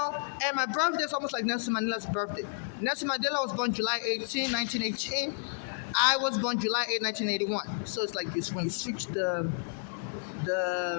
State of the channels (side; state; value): right; silent; 57 dB below the other